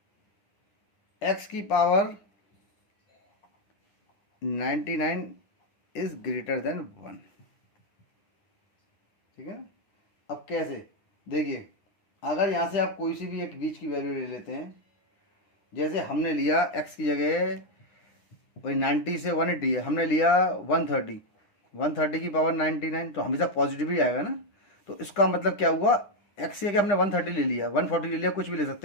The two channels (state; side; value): late; right; 9.9 ms